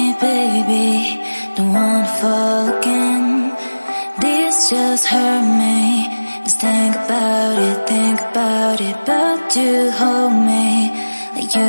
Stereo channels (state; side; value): inverted; both; correlation -1.00